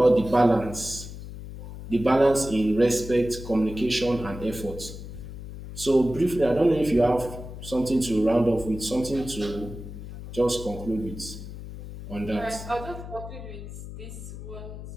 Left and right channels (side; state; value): left; noise; hum, 11 dB below the sound